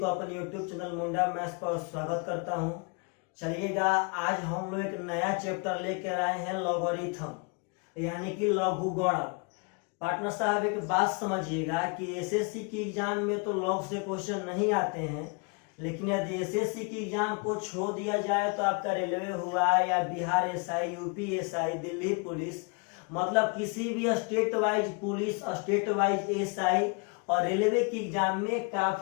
अपने YouTube चैनल मुंडा मैथ्स पर स्वागत करता हूं। चलिएगा, आज हम लोग एक नया चैप्टर लेकर आए हैं लॉगरिथम यानी कि लघुगणक। पार्टनर साहब एक बात समझिएगा कि एसएससी की एग्जाम में तो लॉग से क्वेश्चन नहीं आते हैं, लेकिन यदि एसएससी की एग्जाम को छोड़ दिया जाए तो आपका रेलवे हुआ या Bihar SI, UP SI, Delhi police, मतलब किसी भी state wise police, state wise SI और रेलवे की एग्जाम में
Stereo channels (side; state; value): right; quieter; 34.2 dB